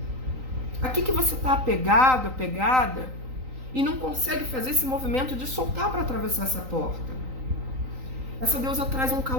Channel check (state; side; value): late; left; 3.9 ms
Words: A que você está apegado, apegada, e não consegue fazer esse movimento de soltar para atravessar essa porta? Essa deusa traz um